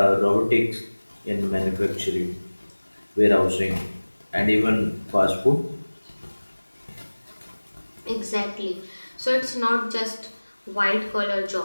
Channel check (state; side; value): inverted; both; correlation -1.00